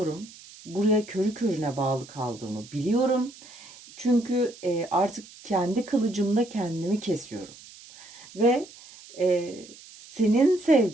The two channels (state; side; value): noise; right; hiss, 20 dB below the sound